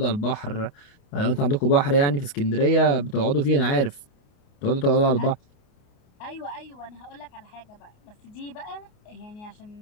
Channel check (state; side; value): late; right; 29 ms